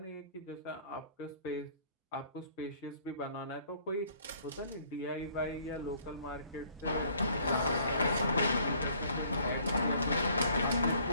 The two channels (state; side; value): inverted; both; correlation -0.60